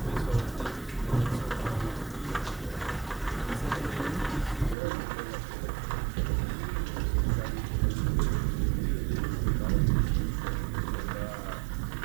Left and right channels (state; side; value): drops out; left; at 4.8 s